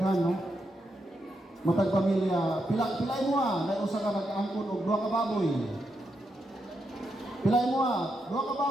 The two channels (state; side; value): normal; both; correlation 0.83